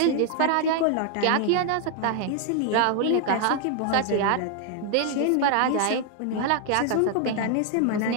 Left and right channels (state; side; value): different; both; correlation 0.00